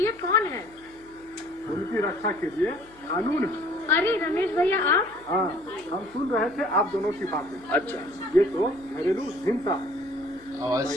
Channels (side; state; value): left; noise; hum, 27 dB below the sound